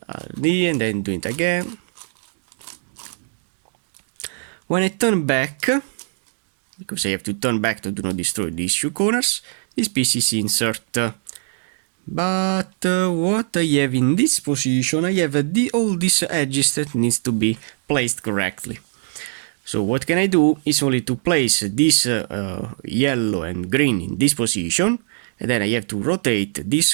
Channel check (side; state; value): left; silent; digital silence